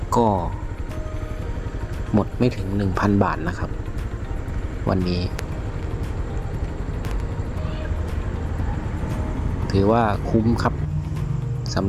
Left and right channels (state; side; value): identical; both; correlation 1.00